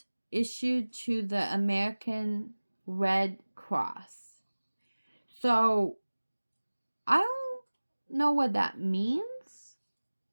issued to the American Red Cross. So I don't know what that means,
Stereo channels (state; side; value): inverted; both; correlation -1.00